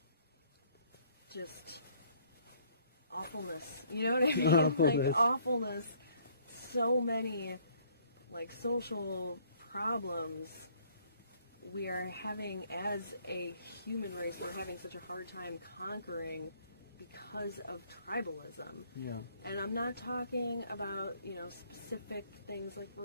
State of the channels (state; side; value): inverted; both; correlation -0.62